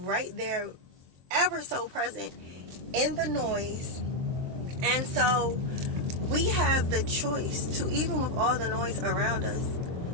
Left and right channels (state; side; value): late; left; 23 ms